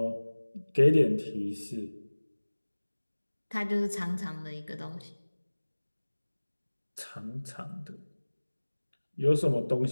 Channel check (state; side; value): inverted; both; correlation -1.00